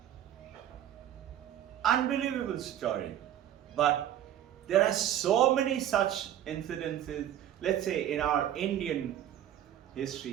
unbelievable story. But there are so many such incidences. Let's say in our Indian history,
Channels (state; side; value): quieter; left; 11.2 dB